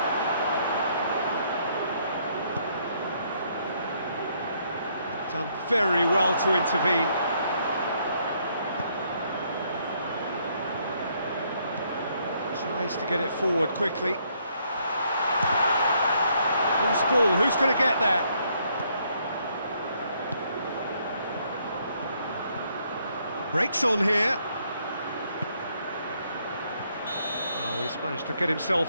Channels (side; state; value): both; inverted; correlation -0.70